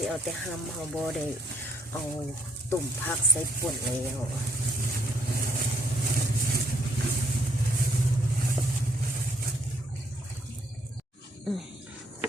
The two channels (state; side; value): normal; both; correlation 0.69